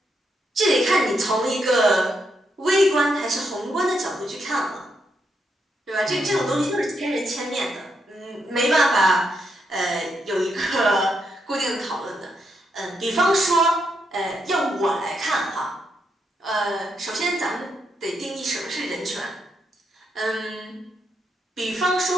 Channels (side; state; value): both; normal; correlation 0.80